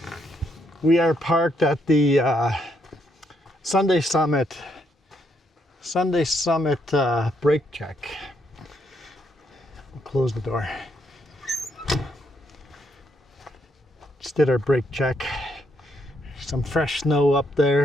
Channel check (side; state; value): both; normal; correlation 0.75